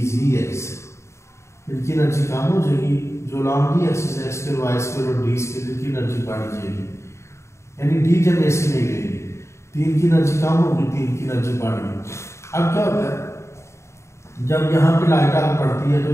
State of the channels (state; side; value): late; right; 0.14 ms